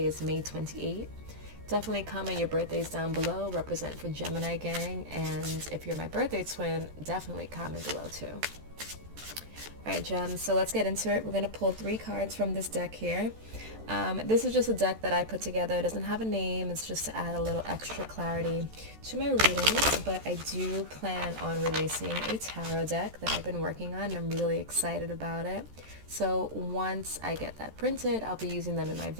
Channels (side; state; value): left; late; 13 ms